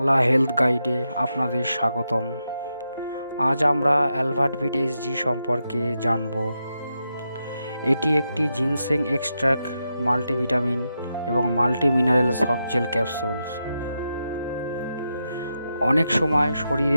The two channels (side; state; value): both; inverted; correlation -0.86